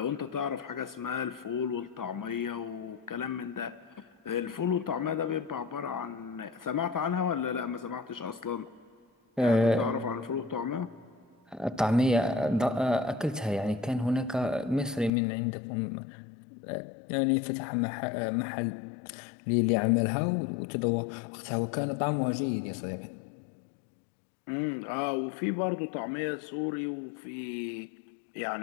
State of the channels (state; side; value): drops out; right; at 15.1 s